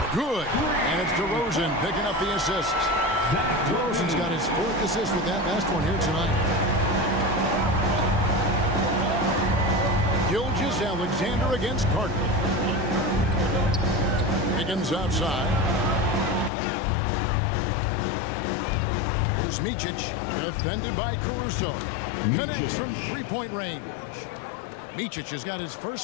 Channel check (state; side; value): drops out; right; at 16.5 s